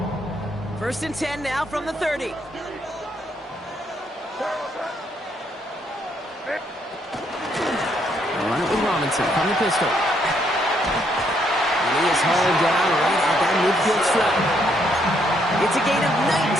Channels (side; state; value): both; normal; correlation 0.72